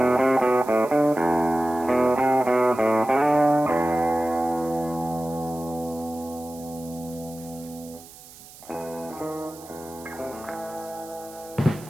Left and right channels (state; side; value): noise; right; hiss, 19 dB below the sound